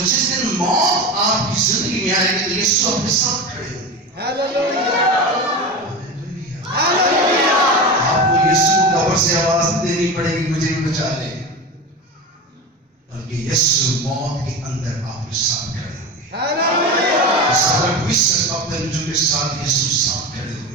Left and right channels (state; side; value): normal; both; correlation 0.26